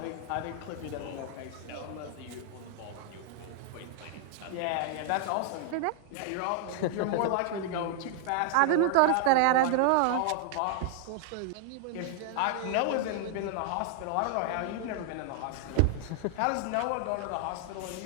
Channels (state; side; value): different; both; correlation 0.00